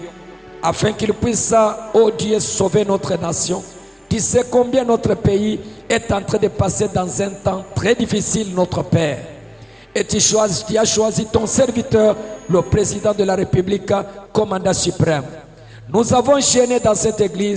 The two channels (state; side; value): identical; both; correlation 1.00